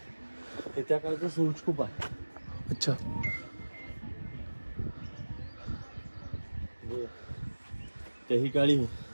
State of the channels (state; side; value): inverted; both; correlation -1.00